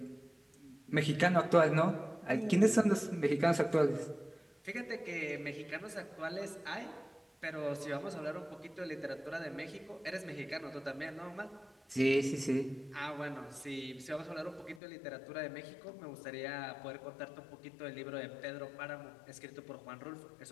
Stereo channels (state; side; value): drops out; right; at 14.8 s